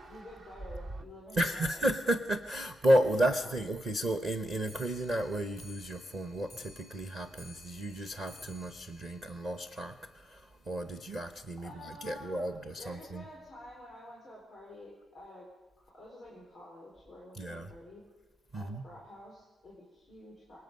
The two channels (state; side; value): normal; both; correlation 0.85